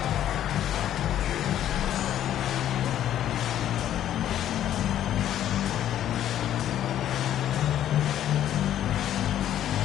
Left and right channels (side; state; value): right; quieter; 11.3 dB